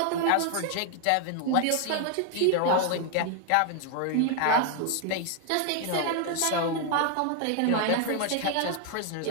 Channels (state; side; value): different; both; correlation 0.00